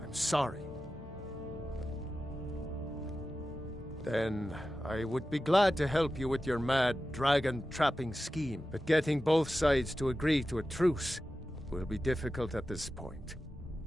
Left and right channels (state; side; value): normal; both; correlation 0.93